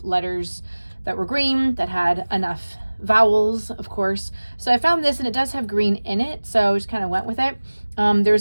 letters that were green, that had enough vowels, of course. So I found this, and it does have green in it, so I just kind of went with it.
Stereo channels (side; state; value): both; inverted; correlation -1.00